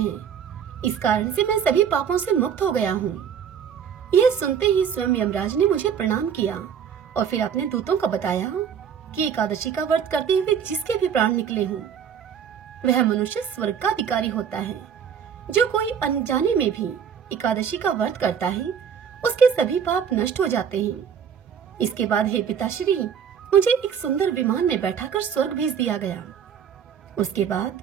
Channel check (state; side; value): quieter; left; 7.8 dB